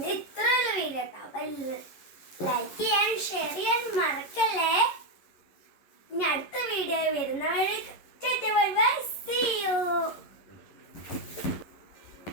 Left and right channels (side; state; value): right; late; 11 ms